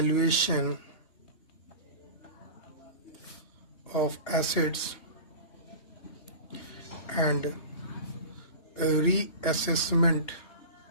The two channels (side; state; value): right; late; 2.8 ms